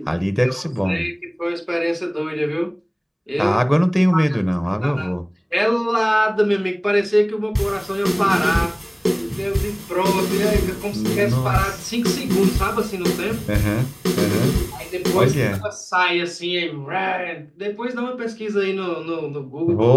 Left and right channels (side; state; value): both; identical; correlation 1.00